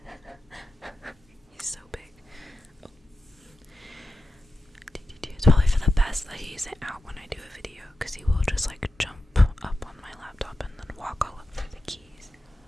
He's so big. Oh. It's probably for the best that he isn't out when I do a video, because he will just like jump up on my laptop and then walk all over the keys.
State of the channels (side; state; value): both; normal; correlation 0.91